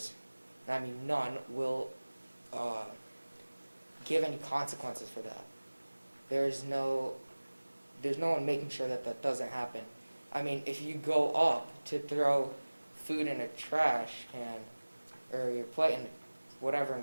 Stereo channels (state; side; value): inverted; both; correlation -1.00